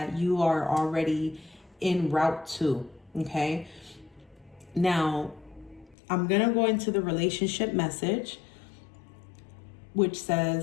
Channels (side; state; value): right; drops out; at 6.0 s